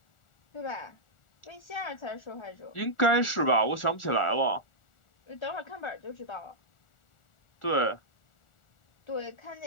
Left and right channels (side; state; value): right; late; 1.4 ms